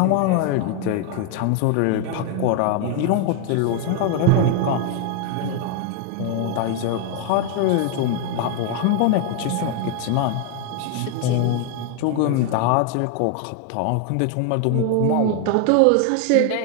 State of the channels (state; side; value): different; both; correlation 0.01